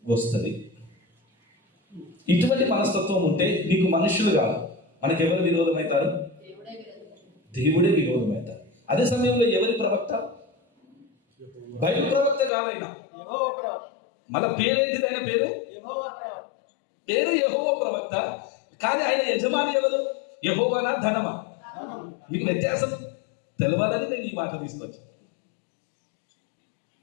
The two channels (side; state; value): right; drops out; at 12.5 s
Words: వస్తుంది. ఇటువంటి మనస్తత్వం ఉంటే నీకు మనుషులు కాదు, మనకి ఎవరు విరోధం అవుతారు? దేవుడే విరోధం అవుతారు. అదే సమయంలో ఎవరి ప్రవక్త? బైబిల్ ప్రవక్త కాదైనా, మన పేరేంటిది? ఆయన పేరు యెహోవా ప్రవక్త. కానీ ఆయన యజమాని ఎవరు? యెహోవానా ధనమా? మీకు వ్యత్యాసం తెలవాలని నేను ఈ మాట తీసుకొచ్చాను.